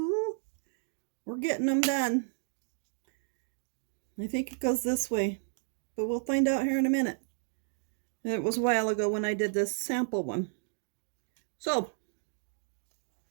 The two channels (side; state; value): left; silent; digital silence